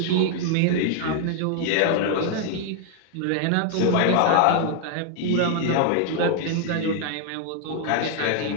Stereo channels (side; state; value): both; different; correlation 0.00